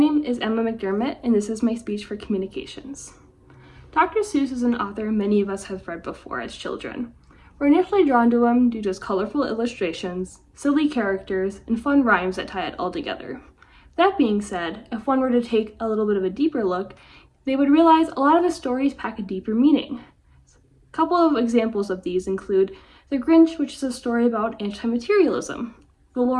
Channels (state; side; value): identical; both; correlation 1.00